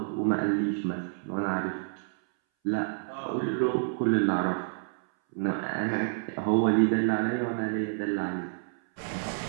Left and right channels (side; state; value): left; silent; 59 dB below the other